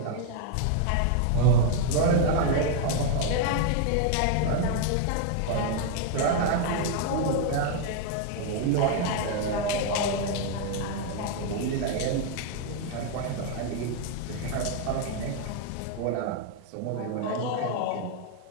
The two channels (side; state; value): both; different; correlation 0.00